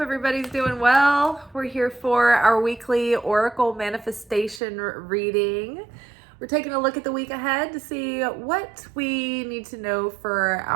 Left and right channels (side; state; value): left; drops out; at 4.6 s